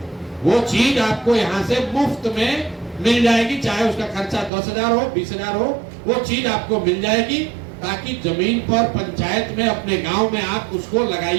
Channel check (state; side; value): drops out; left; at 4.5 s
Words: वो चीज आपको यहाँ से मुफ्त में मिल जाएगी। चाहे उसका खर्चा 10,000 हो, 20,000 हो, वो चीज आपको मिल जाएगी, ताकि जमीन पर पंचायत में, अपने गांव में आप उसको